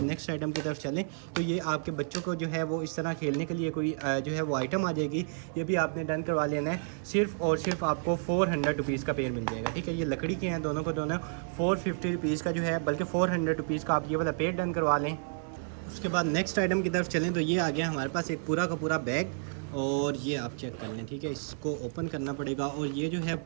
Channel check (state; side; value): silent; left; 57 dB below the other